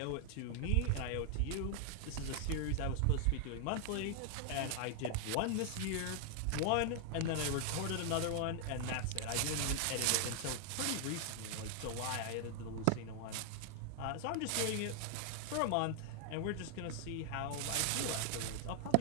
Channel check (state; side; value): different; both; correlation 0.00